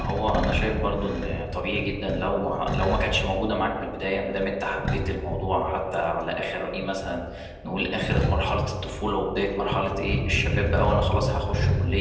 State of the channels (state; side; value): identical; both; correlation 1.00